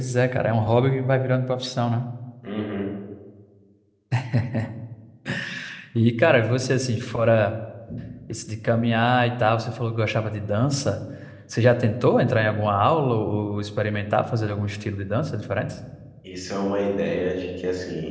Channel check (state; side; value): identical; both; correlation 1.00